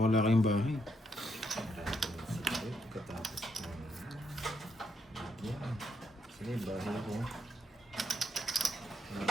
kayong bahay. Katapos. Yan. Sige, bahay ko.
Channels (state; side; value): normal; both; correlation 0.76